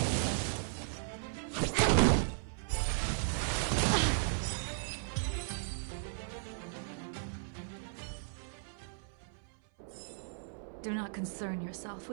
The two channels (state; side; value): silent; left; 54 dB below the other